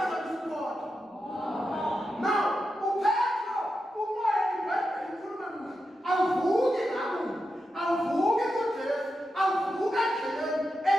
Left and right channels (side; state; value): both; normal; correlation 0.88